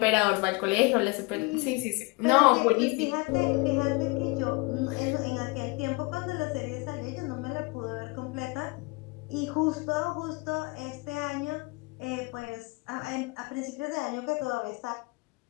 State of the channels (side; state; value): right; quieter; 26.6 dB